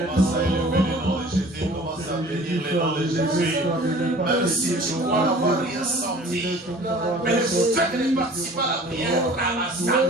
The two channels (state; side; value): normal; both; correlation 0.47